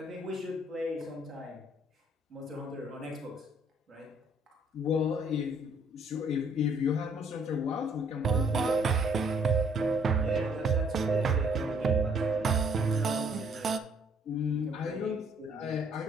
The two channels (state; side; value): normal; both; correlation 0.63